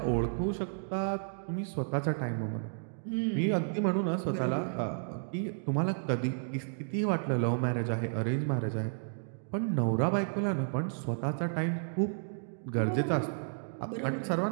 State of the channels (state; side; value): silent; left; digital silence